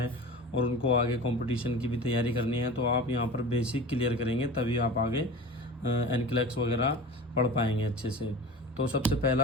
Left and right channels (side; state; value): both; normal; correlation 0.34